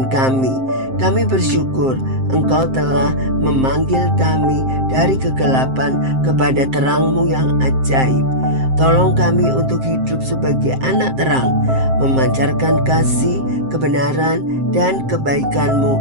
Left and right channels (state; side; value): late; left; 7.6 ms